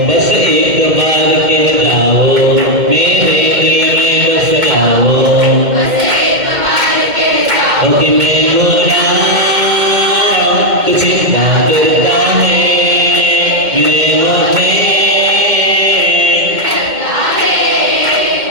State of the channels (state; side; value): late; left; 2.1 ms